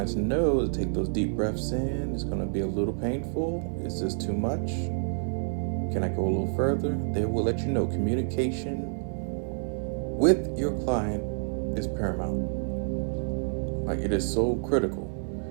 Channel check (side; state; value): left; silent; 59 dB below the other